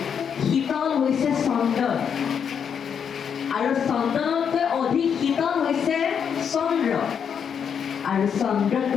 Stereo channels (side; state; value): right; quieter; 7.4 dB